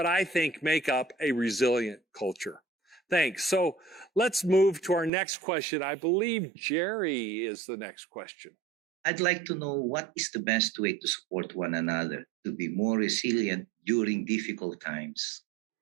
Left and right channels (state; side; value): drops out; left; at 5.1 s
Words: I think make up a resilient culture. Thanks. So let's move to our next question. I believe Jerry is the next question. I'd like to know what is the best way to support one another to be more resilient during difficult times.